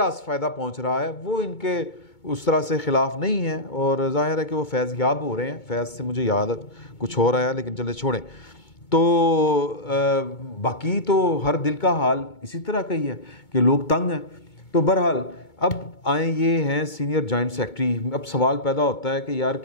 फ़ायदा पहुँच रहा है वो इनके उस तरह से ख़िलाफ़ नहीं है। और ज़ाहिर है कि वो फैज़ याब हो रहे हैं, फैज़ से मुझे याद कुछ हो रहा है लेकिन चले छोड़ें। तो बाकी तो हर दिल का हाल इसी तरह का ही है कि लोग तंग हैं। तो बहरहाल अब आए ये हैं सीनियर जॉइंट सेक्रेटरी। अब सवाल पैदा होता है कि यार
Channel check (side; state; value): right; late; 2.2 ms